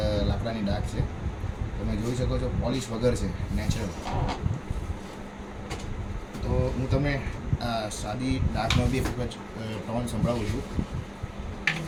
લાકડાની ડાક છે, તમે જોઈ શકો છો, પોલિશ વગર છે, નેચરલ. તો હું તમને આ સાદી ડાકનો બી એક વખત ટોન સંભળાવું છું.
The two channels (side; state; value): both; identical; correlation 1.00